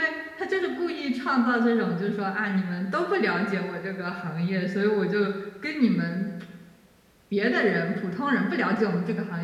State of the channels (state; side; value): identical; both; correlation 1.00